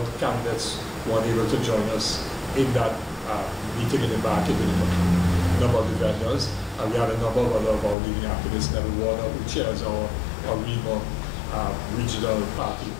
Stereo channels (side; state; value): right; drops out; at 8.0 s